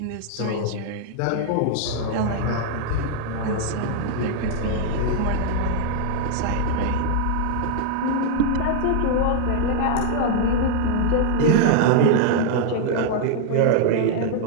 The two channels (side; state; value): both; different; correlation 0.00